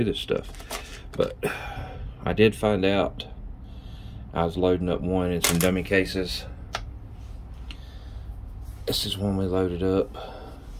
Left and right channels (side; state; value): both; identical; correlation 1.00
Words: this stuff. But I did find out, I was loading up one in some dummy cases. This is one we loaded up.